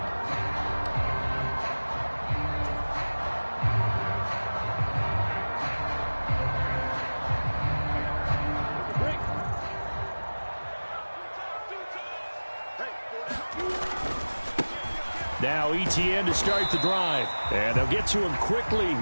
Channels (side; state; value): both; inverted; correlation -1.00